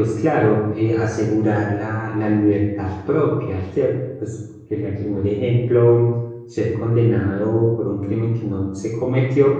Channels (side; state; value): both; identical; correlation 1.00